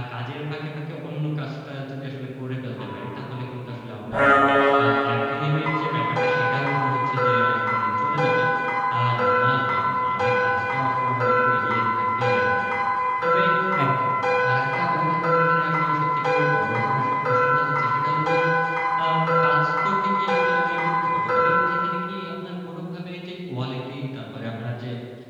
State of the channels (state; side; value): identical; both; correlation 1.00